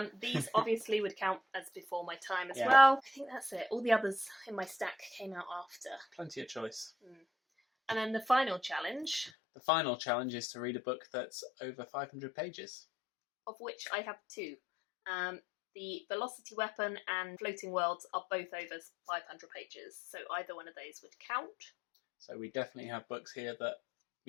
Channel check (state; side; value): drops out; right; at 9.3 s